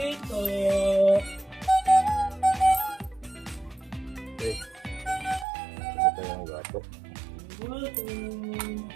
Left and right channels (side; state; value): left; drops out; at 5.5 s